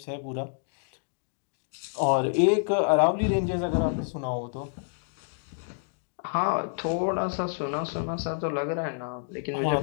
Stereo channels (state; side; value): silent; right; digital silence